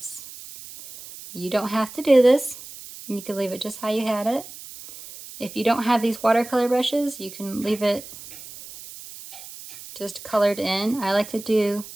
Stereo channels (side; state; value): right; noise; hiss, 15 dB below the sound